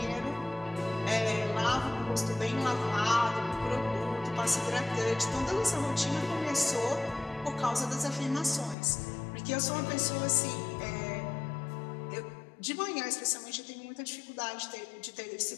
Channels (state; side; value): drops out; right; at 8.8 s